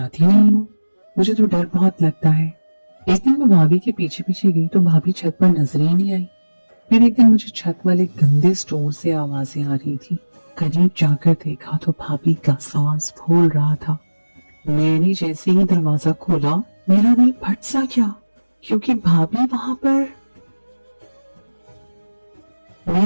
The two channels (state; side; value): inverted; both; correlation -1.00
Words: नहीं हूँ, मुझे तो डर बहुत लगता है। एक दिन मैं भाभी के पीछे पीछे गई तो भाभी छत पर नजर ही नहीं आई। फिर एक दिन मुझे छत वाले गंदे स्टोर से आवाजें आ रही थी। करीब जाकर देखा तो भाभी का सांस फूल रहा था। मैंने जैसे ही दरवाजा खोला मेरा दिल फट सा गया, क्योंकि भाभी वहां पर।